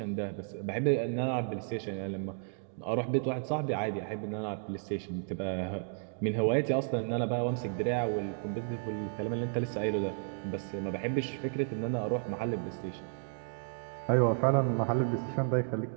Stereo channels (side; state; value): left; silent; digital silence